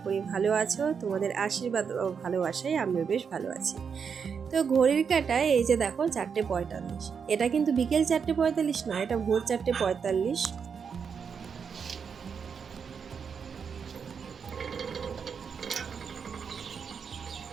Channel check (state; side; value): quieter; left; 6.4 dB